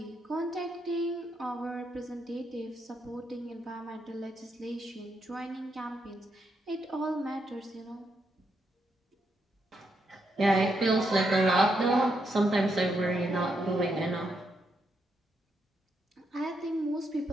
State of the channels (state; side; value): normal; both; correlation 0.80